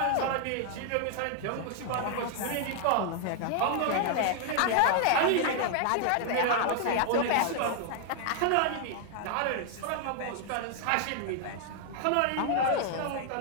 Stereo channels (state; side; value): different; both; correlation 0.00